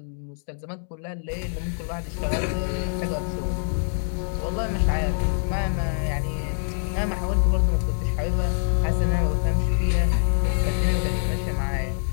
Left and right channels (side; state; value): right; silent; 62 dB below the other